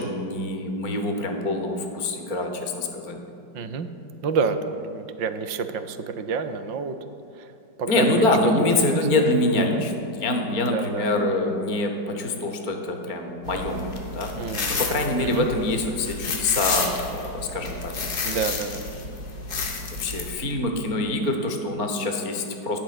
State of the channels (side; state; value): left; late; 4.8 ms